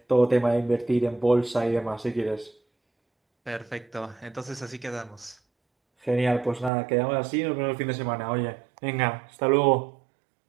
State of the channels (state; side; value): drops out; left; at 6.7 s